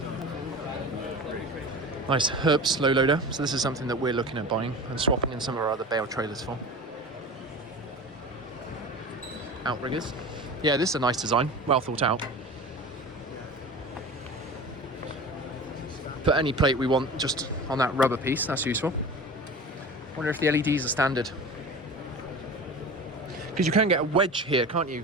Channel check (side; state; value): both; normal; correlation 0.34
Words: Nice Herps low loader. So this is something that we're looking at buying and swapping in some of our other bale trailers for. Outriggers. Yeah, this is a nice design, well thought out. Put any plate we want just on that rubber piece, that's useful. Wonder if the LEDs are standard. Because you can get a wedge here, can't